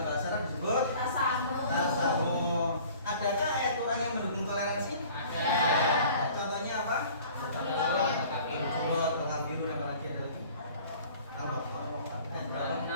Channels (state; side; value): inverted; both; correlation -0.48